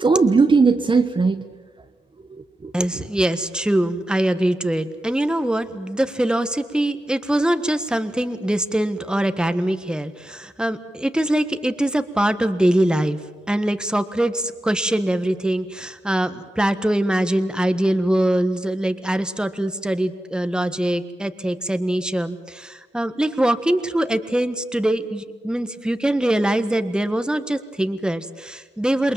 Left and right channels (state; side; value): normal; both; correlation 0.91